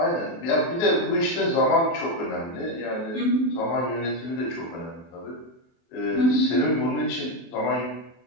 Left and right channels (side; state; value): right; late; 24 ms